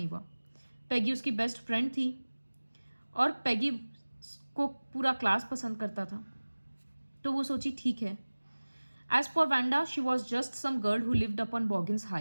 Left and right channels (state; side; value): inverted; both; correlation -1.00